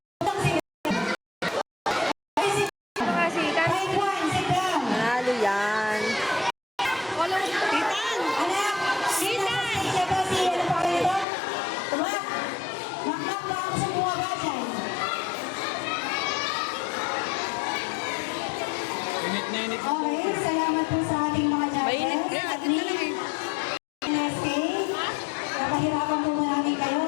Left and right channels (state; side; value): drops out; right; at 11.2 s